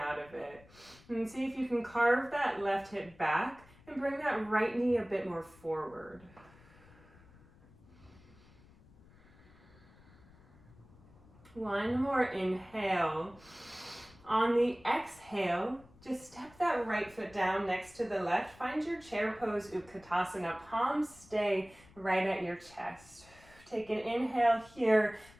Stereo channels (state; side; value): noise; left; rumble, 25 dB below the sound